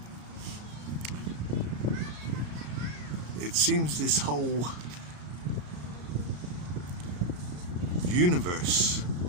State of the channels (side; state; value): left; late; 34 ms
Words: It seems this whole universe